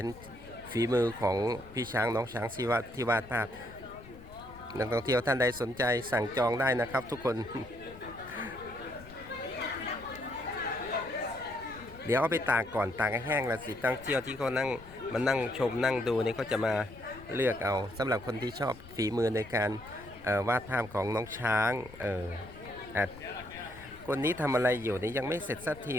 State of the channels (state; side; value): noise; left; rumble, 18 dB below the sound